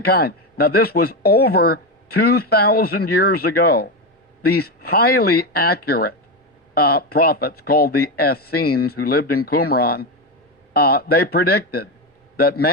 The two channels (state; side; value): normal; both; correlation 0.12